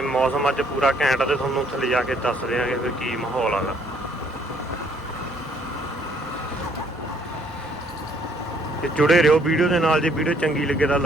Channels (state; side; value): normal; both; correlation 0.65